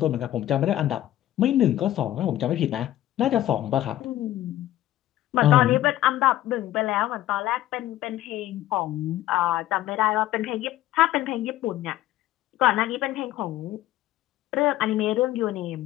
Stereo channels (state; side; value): quieter; right; 14.0 dB